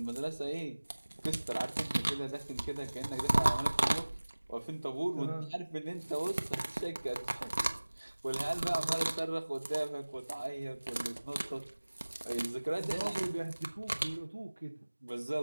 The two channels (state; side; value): inverted; both; correlation -1.00